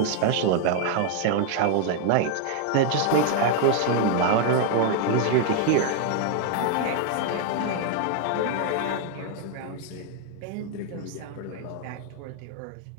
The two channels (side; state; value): both; different; correlation 0.00